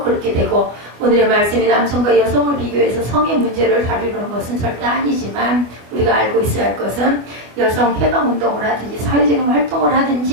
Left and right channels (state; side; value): late; left; 24 ms